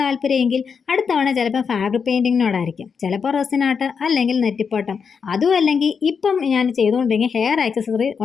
താല്പര്യമെങ്കിൽ അടുത്ത തവണ ചിലപ്പോൾ ഫാബ്രിക് പെയിൻറ്റിങ്ങിനോടായിരിക്കും, ചിലപ്പോൾ റെസിൻ ആർട്ട് അല്ലെങ്കിൽ നെറ്റിപ്പട്ടം, അതും അല്ലെങ്കിൽ ഇപ്പം ഞാൻ ചെയ്തുകൊണ്ടിരിക്കുന്ന ഹെയർ ആക്സസറി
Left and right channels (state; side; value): quieter; right; 6.1 dB